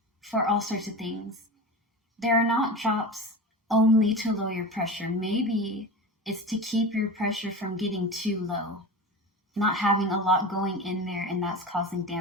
for all sorts of things. There are not drops only to lower your pressure. Maybe it's to keep your pressure from getting too low, not having a lot going in there, and that's causing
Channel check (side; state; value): both; normal; correlation 0.29